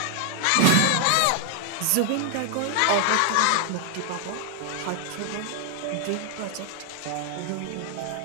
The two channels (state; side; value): different; both; correlation 0.00